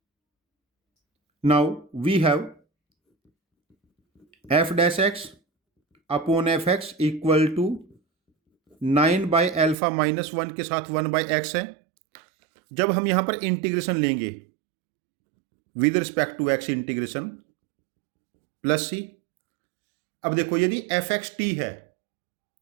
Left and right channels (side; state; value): left; drops out; at 9.8 s